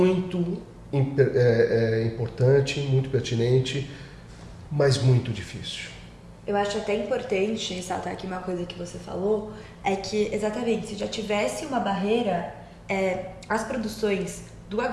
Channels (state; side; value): identical; both; correlation 1.00